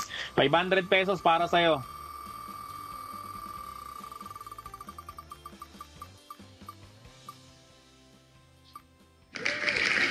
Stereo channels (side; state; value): both; identical; correlation 1.00